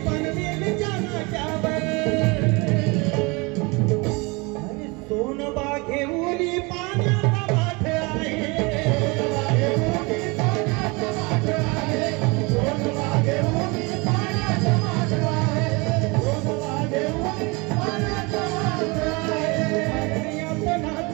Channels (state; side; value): quieter; left; 27.3 dB